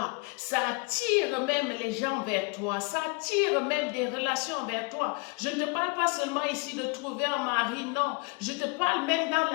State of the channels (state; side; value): quieter; right; 30.3 dB